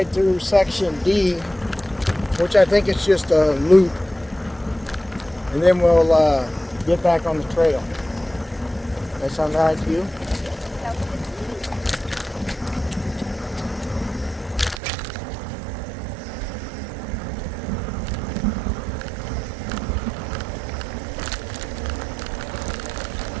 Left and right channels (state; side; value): drops out; left; at 14.8 s